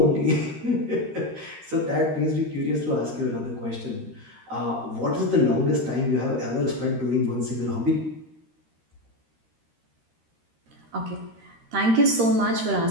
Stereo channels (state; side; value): late; left; 13 ms